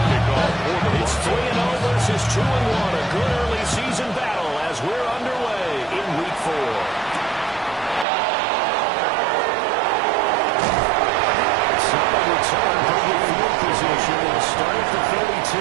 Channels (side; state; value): left; drops out; at 8.1 s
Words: It's 3-0 versus 2-1, a good early season battle as we're underway in week 4. Solid return from the field position and start at the 32.